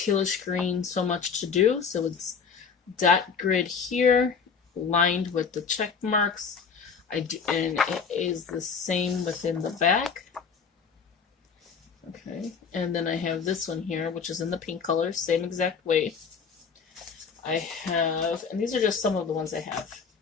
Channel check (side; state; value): right; quieter; 6.0 dB